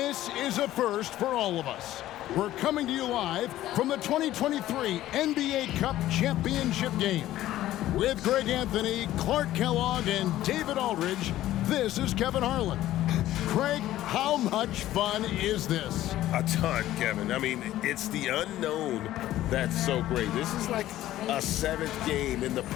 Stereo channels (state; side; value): quieter; right; 14.2 dB